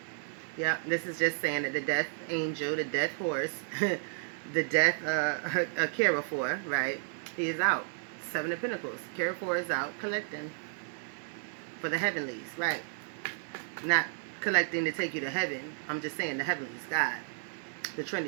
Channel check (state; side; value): silent; left; digital silence